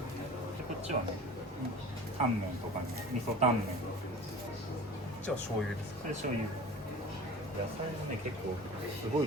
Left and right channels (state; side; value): normal; both; correlation 0.39